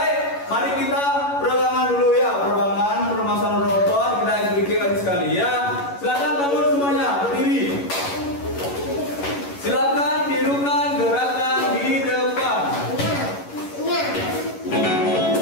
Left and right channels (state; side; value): late; right; 11 ms